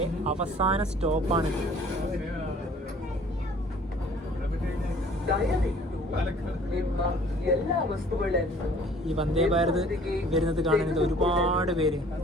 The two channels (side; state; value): both; normal; correlation 0.53